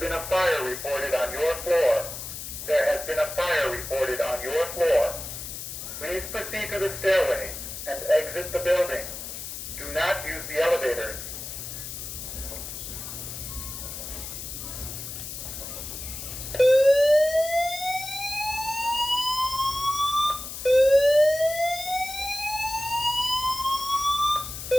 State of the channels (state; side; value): noise; left; hiss, 8 dB below the sound